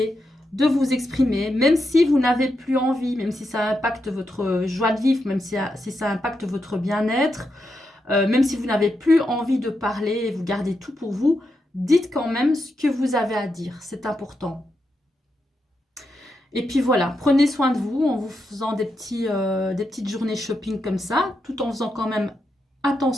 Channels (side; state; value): both; normal; correlation 0.85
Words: de vous exprimer, même si vous n'avez plus envie, même si ça impacte votre joie de vivre, même si ça impacte votre bien-être. même si vous n'avez plus envie de parler et vous gardez tout pour vous, dites quand même ce que vous avez à dire, c'est important. Et puis voilà, prenez soin de vous en vous faisant des petites journées shopping comme ça, tout en faisant quand même